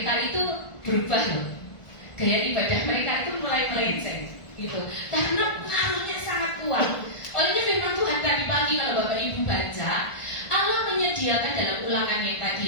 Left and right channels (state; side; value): late; right; 1.5 ms